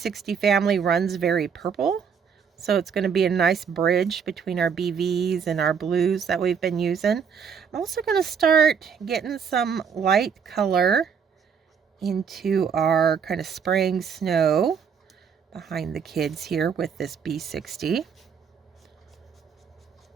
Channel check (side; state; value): left; quieter; 6.8 dB